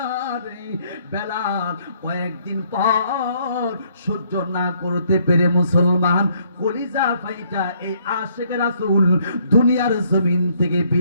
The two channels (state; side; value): inverted; both; correlation -0.67